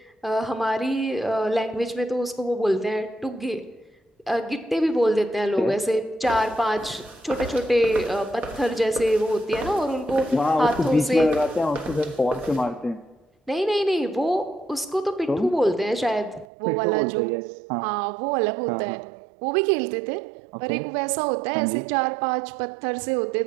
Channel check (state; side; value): drops out; left; at 16.4 s